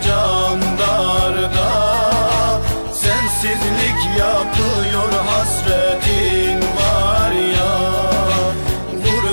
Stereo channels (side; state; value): both; inverted; correlation -1.00